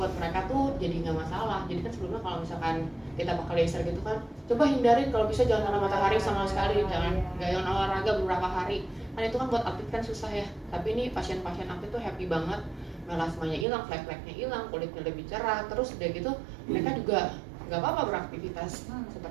mereka tuh jadi nggak masalah. Jadi kan sebelumnya kalau misalkan kita pakai laser gitu kan, coba hindarin kalau bisa jangan kena matahari sama sekali, jangan jangan olahraga beberapa hari. Kan itu kan buat atlet kan susah ya. Tapi ini pasien-pasien atlet tuh happy banget, melasmanya hilang, flek-fleknya hilang, kulitnya lebih cerah, terus udah gitu mereka juga nggak apa-apa beraktivitas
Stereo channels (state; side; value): drops out; left; at 13.7 s